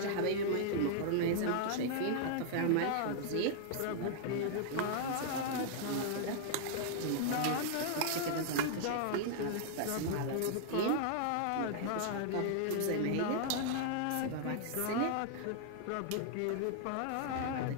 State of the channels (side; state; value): both; different; correlation -0.01